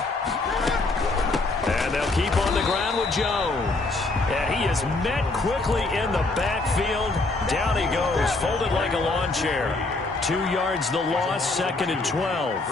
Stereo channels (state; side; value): quieter; right; 3.2 dB